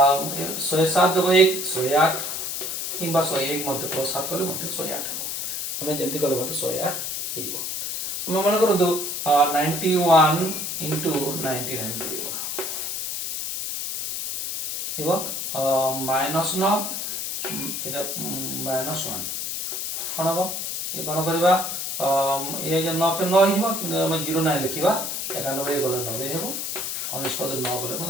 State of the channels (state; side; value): noise; left; hiss, 3 dB below the sound